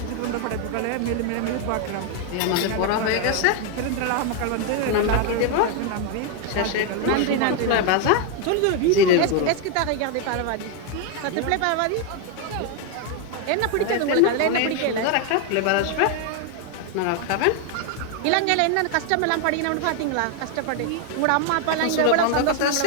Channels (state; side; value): different; both; correlation 0.01